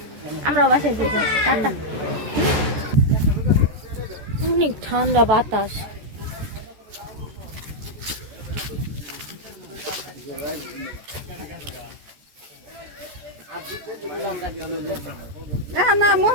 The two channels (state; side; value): late; left; 14 ms